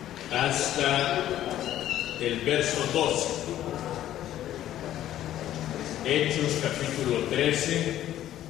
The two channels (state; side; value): quieter; right; 12.5 dB